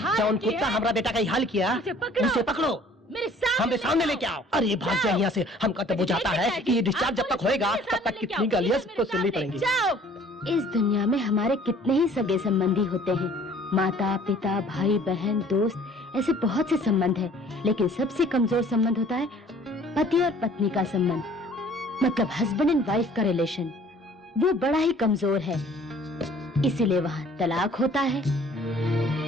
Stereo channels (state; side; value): normal; both; correlation 0.53